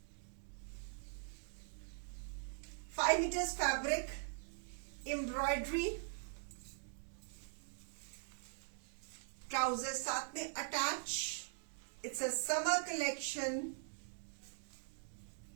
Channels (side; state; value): left; silent; digital silence